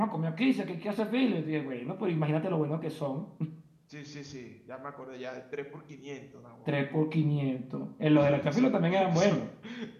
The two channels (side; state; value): both; identical; correlation 1.00